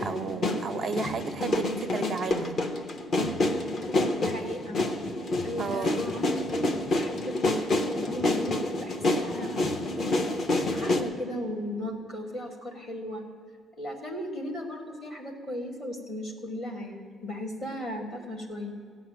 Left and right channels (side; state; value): both; normal; correlation 0.71